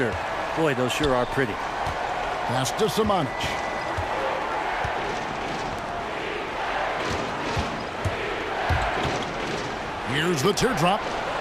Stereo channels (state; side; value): identical; both; correlation 1.00